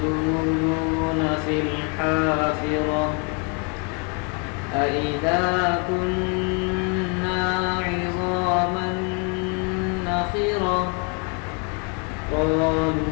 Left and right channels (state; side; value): quieter; right; 35.5 dB